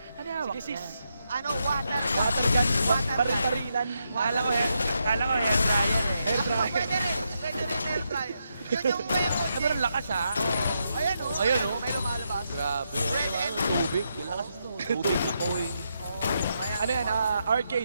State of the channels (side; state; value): both; inverted; correlation -0.82